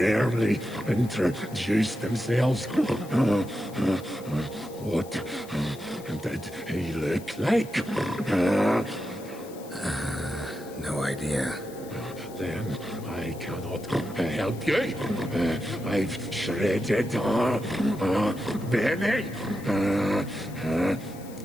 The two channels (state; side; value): noise; left; hiss, 20 dB below the sound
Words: introduce themselves. What did he look like? No idea. Then I cannot help you. I've shredded Benny.